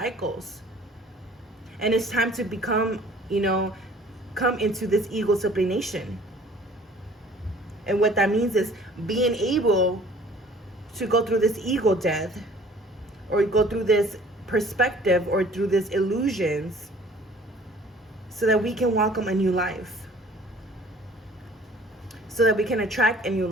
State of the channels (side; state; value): both; normal; correlation 0.52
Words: And it's time to become, come into this ego sublimation. And what that means is being able to go through this ego death, or go through this perspective, or through these illusions, so that we can welcome a new life, so that we can attract a new